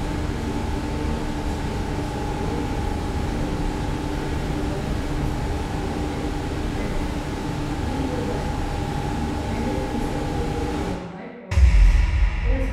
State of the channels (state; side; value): identical; both; correlation 1.00